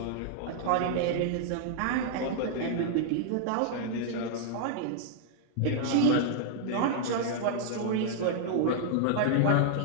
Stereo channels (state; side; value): different; both; correlation -0.01